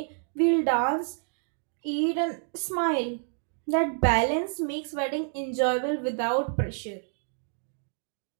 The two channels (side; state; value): left; silent; 59 dB below the other